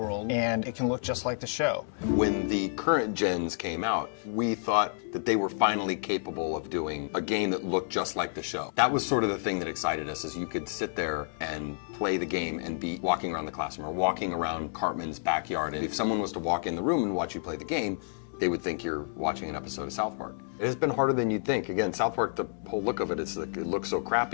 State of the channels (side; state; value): right; silent; digital silence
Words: and it can look just like the show. When the current gens came out, we thought that they were finally capable of doing a game that looked just like the show. That was sort of the thing that excited us, is you could sit there and play the game and be walking around the classroom or walking around Cartman's backyard. And if someone was to walk in the room and watch you play the game, they would think you're watching an episode of South Park. It has been harder than you'd think. Again, South Park, the whole look of it is like, it looks so